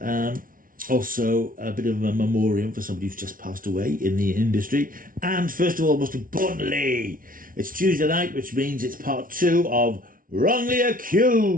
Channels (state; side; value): late; left; 0.40 ms